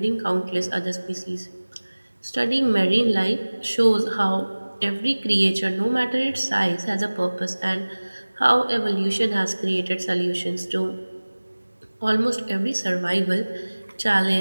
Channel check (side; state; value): both; inverted; correlation -1.00